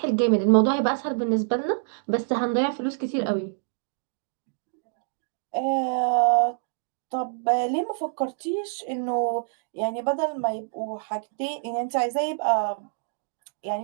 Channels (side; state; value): left; silent; digital silence